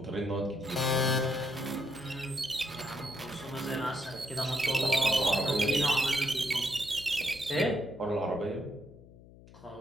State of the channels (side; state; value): left; noise; hum, 21 dB below the sound